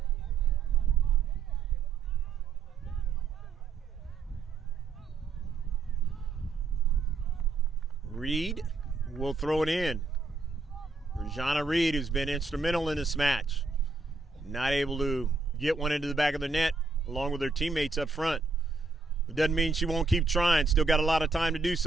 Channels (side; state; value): left; quieter; 4.2 dB